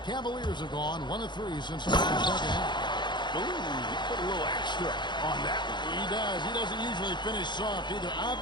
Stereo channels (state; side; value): late; right; 0.22 ms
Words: Cavaliers have gone 1 of 3 since the second half. Ooh, he put a little extra on that one. He does. He doesn't usually finish soft either.